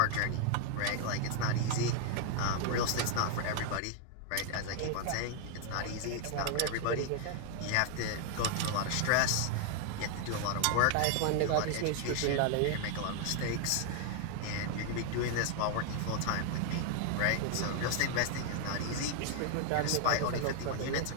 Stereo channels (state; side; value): different; both; correlation 0.00